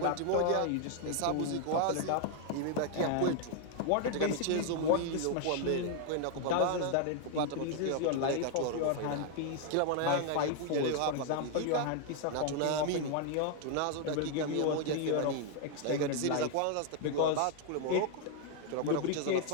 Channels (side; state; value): both; different; correlation 0.00